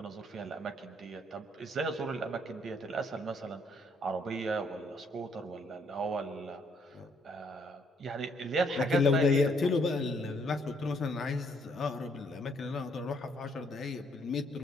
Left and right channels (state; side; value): normal; both; correlation 0.69